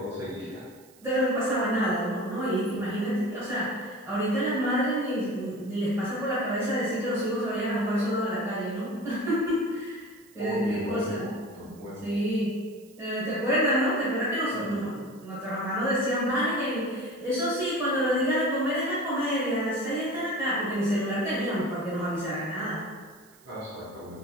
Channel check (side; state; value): right; noise; hiss, 27 dB below the sound